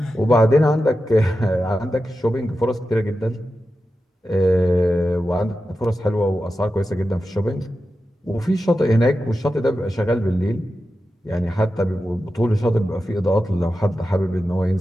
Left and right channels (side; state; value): both; normal; correlation 0.91